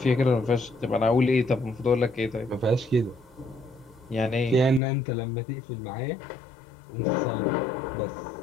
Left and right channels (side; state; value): right; drops out; at 4.8 s